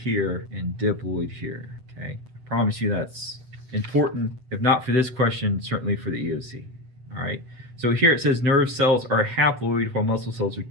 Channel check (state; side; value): late; left; 7.9 ms